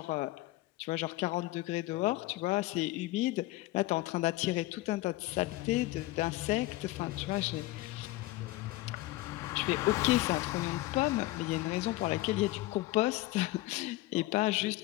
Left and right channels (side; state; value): right; quieter; 18.2 dB